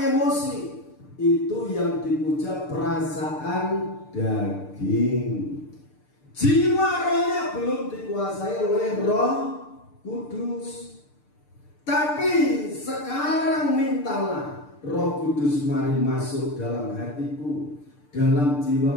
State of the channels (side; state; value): right; late; 6.7 ms